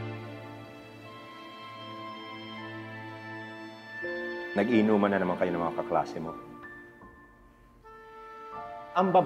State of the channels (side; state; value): both; identical; correlation 1.00